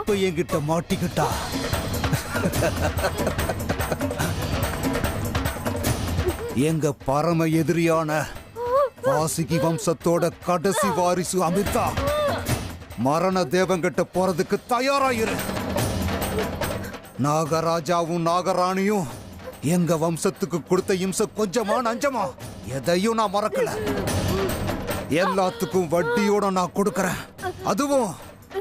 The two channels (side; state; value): both; identical; correlation 1.00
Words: என்கிட்ட மாட்டிக்கிட்டா. எங்க பரம எதிரியான வாசுகி வம்சத்தோட கடைசி வாரிசு அமிர்தா மரண தேவங்கிட்ட போறதுக்கு தயாராயிரு. நாகராஜாவும் நாகராணியும் எங்க வம்சத்துக்கு கொடுத்த இம்சை கொஞ்சமா நஞ்சமா எதையும் நான் மறக்கல. எல்லாத்துக்கும் வட்டியோட நான் கொடுக்கறேன். அதுவும்